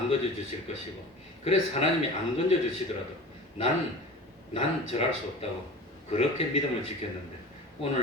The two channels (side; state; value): both; normal; correlation 0.36